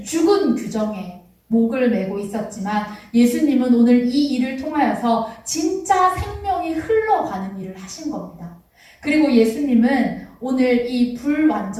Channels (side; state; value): both; identical; correlation 1.00